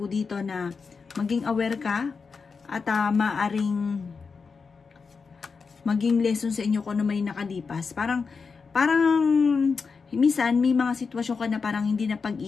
dito na maging aware ka at maaring maging lesson sa inyo kung ano may nakalipas. Parang minsan may mga sitwasyon ka na parang hindi na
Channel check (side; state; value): right; quieter; 5.1 dB